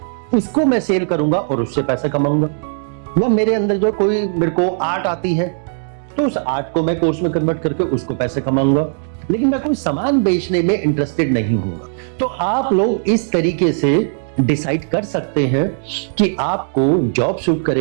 उसको मैं सेल करूंगा और उससे पैसा कमाऊंगा। या मेरे अंदर जो कोई, मेरे को आर्ट आती है, तो उस आर्ट को मैं कोर्स में कन्वर्ट करके उसको पैसे कमाऊंगा, लेकिन मैं कोई सामान बेचने में इंटरेस्टेड नहीं हूंगा। तो आप लोग इस तरीके से डिसाइड कर सकते हैं कि आपको जॉब सूट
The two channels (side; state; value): left; silent; digital silence